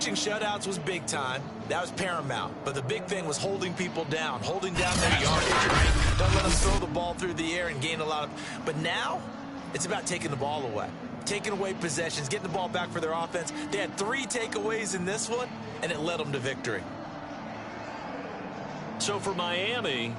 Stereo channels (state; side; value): identical; both; correlation 1.00